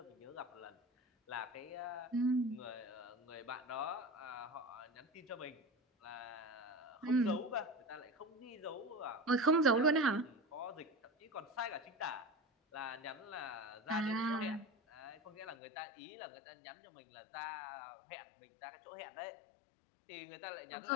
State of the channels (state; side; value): drops out; right; at 15.6 s